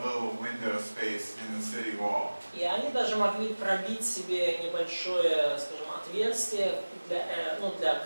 window space in the city wall. И они даже могли пробить себе небольшое, скажем, отверстие для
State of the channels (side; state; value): both; inverted; correlation -1.00